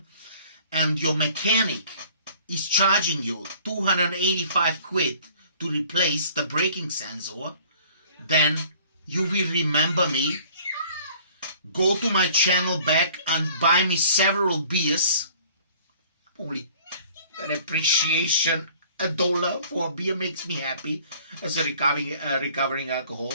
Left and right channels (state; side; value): inverted; both; correlation -0.53